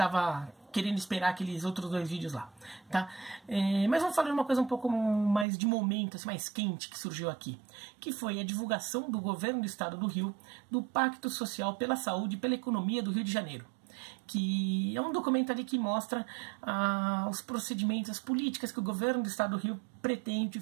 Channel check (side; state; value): left; drops out; at 5.5 s